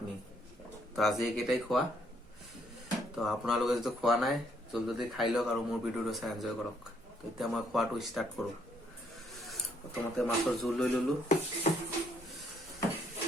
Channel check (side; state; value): both; normal; correlation 0.69